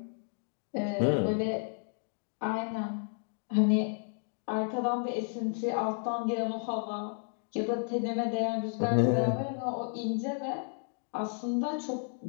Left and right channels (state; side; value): silent; right; 56 dB below the other